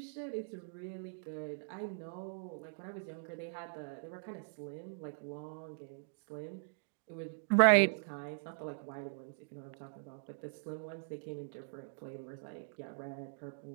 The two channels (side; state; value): left; silent; digital silence